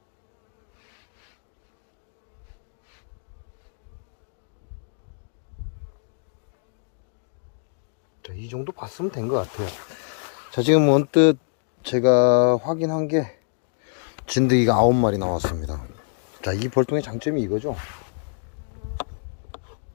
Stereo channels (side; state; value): right; silent; digital silence